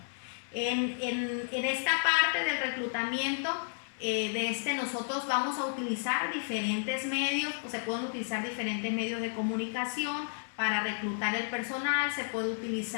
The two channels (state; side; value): silent; right; digital silence